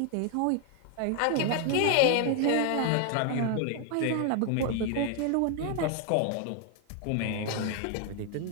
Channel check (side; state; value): both; different; correlation 0.00